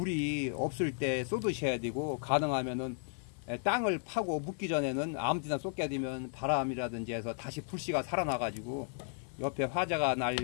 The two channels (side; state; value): right; silent; 55 dB below the other